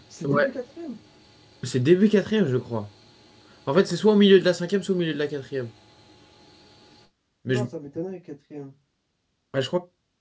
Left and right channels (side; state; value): both; identical; correlation 1.00